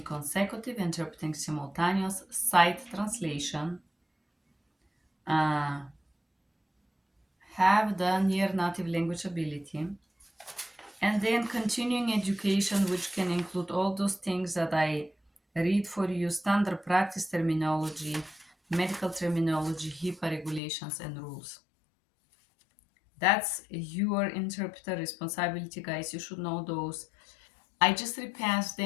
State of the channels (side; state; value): right; drops out; at 20.6 s